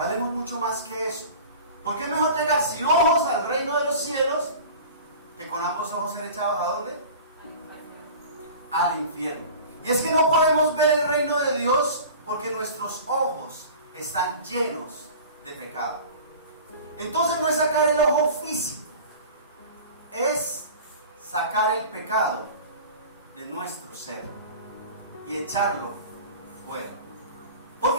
mucho más que eso. Porque es mejor llegar sin ojos al reino de los cielos que con ambos ojos ser echados ¿a dónde? Al infierno. Y es que no podemos ver el reino de Dios porque nuestros ojos están llenos de pecado. Entonces no es sacar el ojo físico, es sacar el pecado de nuestro ser y echarlo fuera. ¿Por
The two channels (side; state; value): both; inverted; correlation -0.39